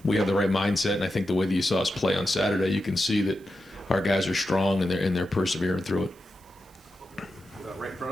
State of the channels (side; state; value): right; noise; hiss, 29 dB below the sound